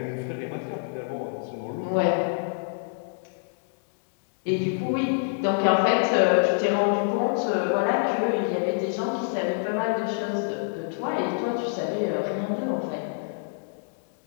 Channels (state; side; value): silent; right; 61 dB below the other